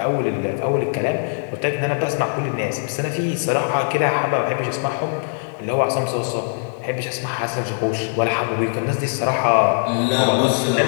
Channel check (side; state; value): right; silent; 65 dB below the other